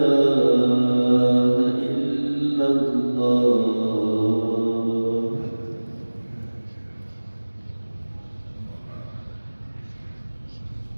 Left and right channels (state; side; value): inverted; both; correlation -1.00